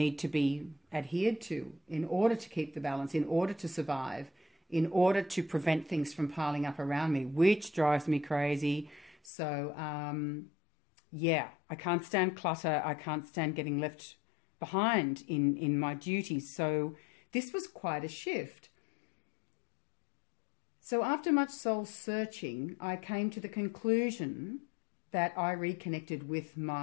to be adhered to in order to keep the balance, in order to survive, in order to prevent things from piling up around me, which drives me crazy. So, yeah, I can't stand clutter. I can't stand getting left behind in my duties. So this was quite a shift. So after much soul searching, I came to the conclusion that I reconnected with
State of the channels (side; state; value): right; drops out; at 9.2 s